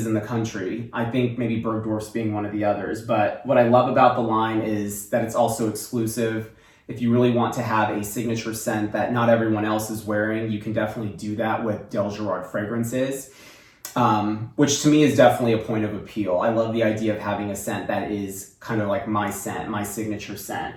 in the country. I think maybe Bergdorf's being one of the others. But what I love about the line is that it's also exclusive. If you really want to have a signature scent that not everyone else is wearing, you can definitely do that with Dalegerard fragrances. Which to me is definitely a point of appeal. I love the idea of having a scent that is kind of like my scent, my signature scent.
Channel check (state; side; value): identical; both; correlation 1.00